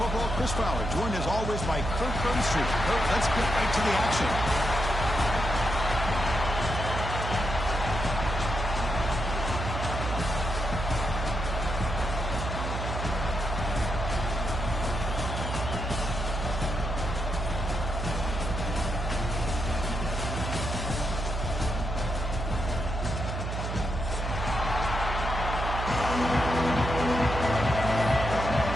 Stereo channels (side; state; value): right; noise; hum, 3 dB below the sound